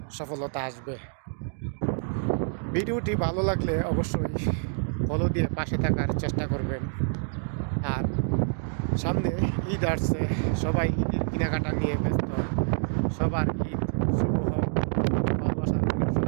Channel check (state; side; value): silent; left; digital silence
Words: সফলতা আসবে। ভিডিওটি ভালো লাগলে অবশ্যই ফলো দিয়ে পাশে থাকার চেষ্টা করবেন। আর সামনে ঈদ আসছে, সবাই ঈদের কেনাকাটা নিয়ে ব্যস্ত। সবার ঈদ শুভ হোক, ভালোবাসা রইল